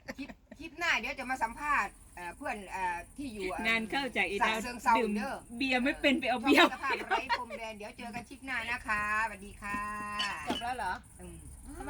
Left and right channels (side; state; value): both; identical; correlation 1.00